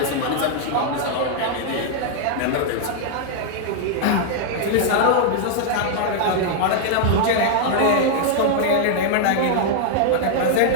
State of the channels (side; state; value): both; different; correlation -0.01